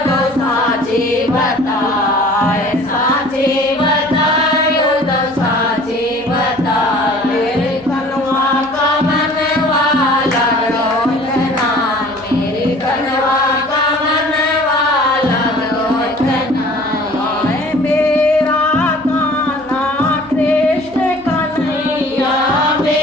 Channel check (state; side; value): noise; right; hum, 27 dB below the sound